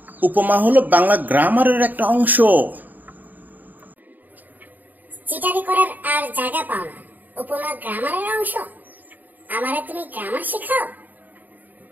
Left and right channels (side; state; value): left; late; 0.085 ms